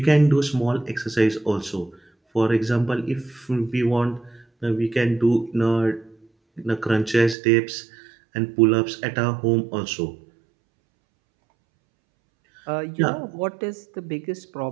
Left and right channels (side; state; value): left; drops out; at 7.4 s